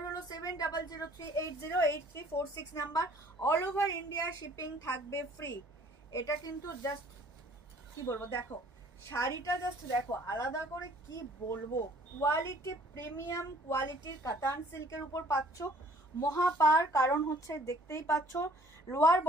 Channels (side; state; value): both; normal; correlation 0.56